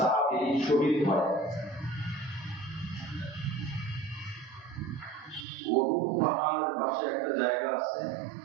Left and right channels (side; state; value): left; drops out; at 5.5 s